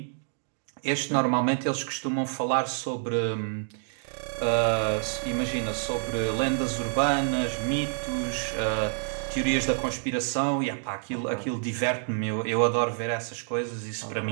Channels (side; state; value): left; silent; digital silence